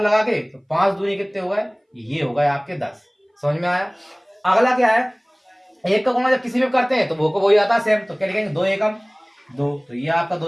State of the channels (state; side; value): identical; both; correlation 1.00